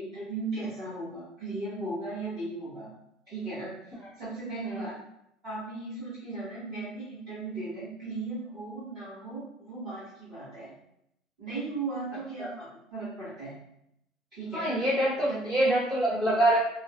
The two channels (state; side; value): normal; both; correlation 0.57